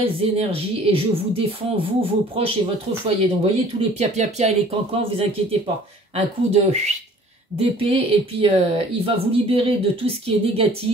énergies et je vous défends, vous, vos proches et votre foyer. Donc, vous voyez, tous les pia-pia-pia et les cancans, vous inquiétez pas. Un coup d'épée et puis il va vous libérer de tout ce qui est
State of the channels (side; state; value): both; normal; correlation 0.51